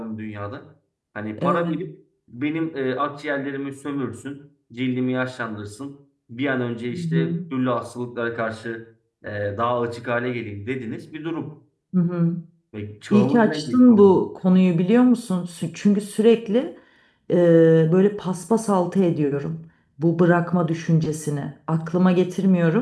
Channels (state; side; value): identical; both; correlation 1.00